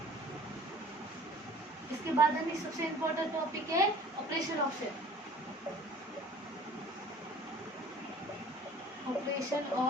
इसके बाद हमें सबसे इम्पोर्टेंट टॉपिक है operation of set, operation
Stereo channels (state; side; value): normal; both; correlation 0.49